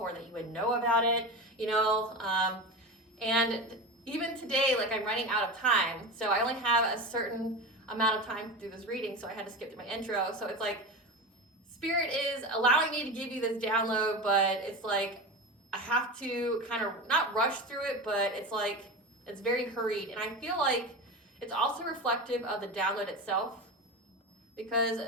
that you would know about it. And even today, I'm running out of time. So I only have a certain amount of time to do this reading. So I had to skip to my intro. So it's Spirit is allowing me to give you this download, but it's I have to kind of not rush through it, but it's very hurried. And I feel it's also reflective of the download itself, because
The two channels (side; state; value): both; normal; correlation 0.25